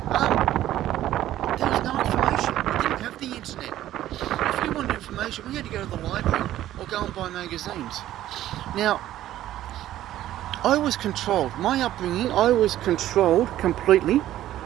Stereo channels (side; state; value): left; quieter; 13.3 dB